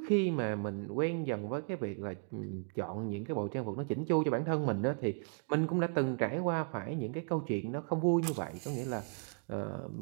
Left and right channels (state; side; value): silent; left; 54 dB below the other